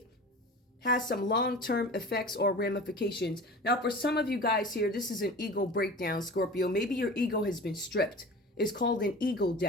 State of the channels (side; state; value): both; normal; correlation 0.37